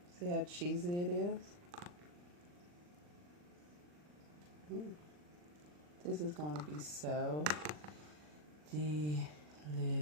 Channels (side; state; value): left; late; 40 ms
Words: See how cheesy it is? This is going to be so delicious.